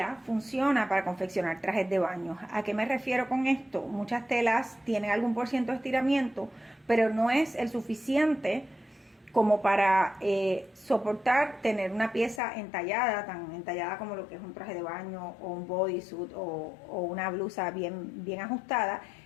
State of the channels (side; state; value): right; drops out; at 12.4 s